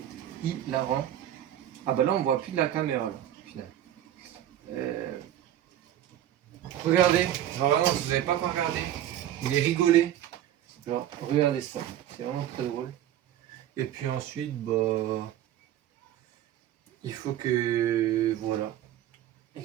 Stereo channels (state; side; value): quieter; left; 11.8 dB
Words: hilarant. Ah bah là on voit plus de la caméra là, au final. Regardez, genre vraiment si vous n'avez pas encore regardé, vous allez rigoler. Genre regardez ça, c'est vraiment très drôle. Et puis ensuite, bah il faut que voilà. Les